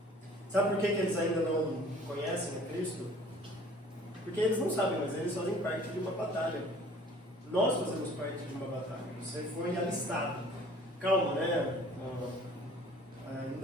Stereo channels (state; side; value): normal; both; correlation 0.51